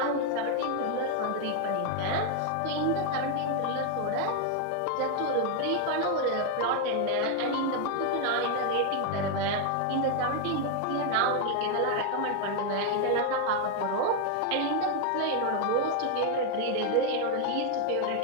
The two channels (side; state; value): both; different; correlation 0.00